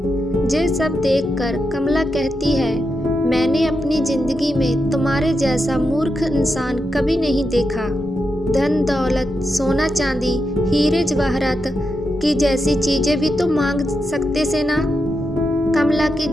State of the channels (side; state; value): both; normal; correlation 0.86